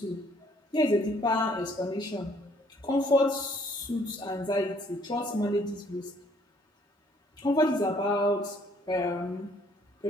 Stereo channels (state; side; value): normal; both; correlation 0.63